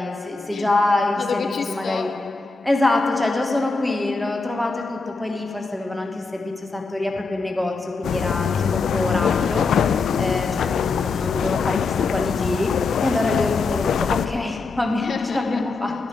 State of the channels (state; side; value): quieter; right; 3.9 dB